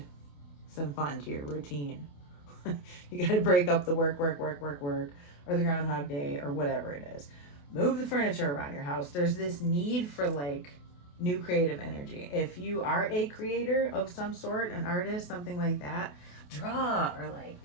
some fun to your routine. You got to break up the work, or the Groundhog Day, or whatever it is. Move the furniture around your house. There's this need for, like, new creative energy. If you are a creator of some sort, an artist, something like that, draw, or, like,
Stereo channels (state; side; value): late; right; 28 ms